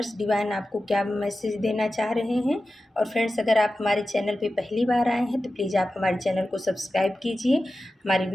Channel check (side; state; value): both; normal; correlation 0.93